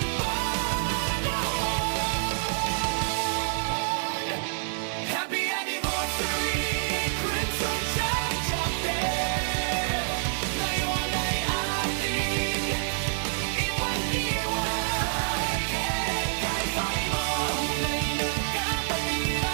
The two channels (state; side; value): silent; left; digital silence